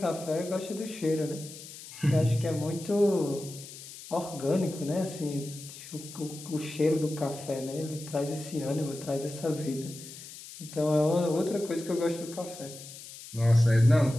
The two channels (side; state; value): left; noise; hiss, 14 dB below the sound